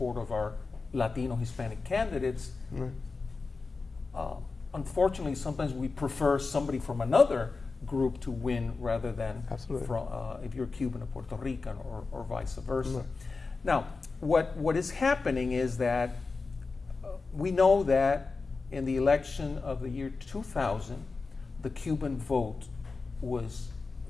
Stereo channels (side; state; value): right; quieter; 4.1 dB